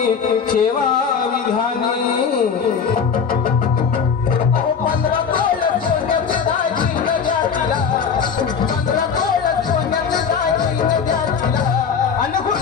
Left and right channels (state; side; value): quieter; right; 6.4 dB